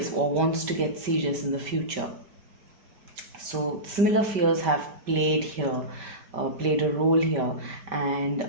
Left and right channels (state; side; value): late; left; 5.1 ms